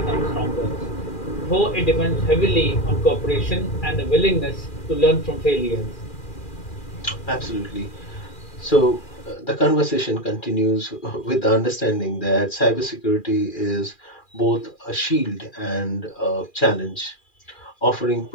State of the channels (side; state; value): right; late; 2.4 ms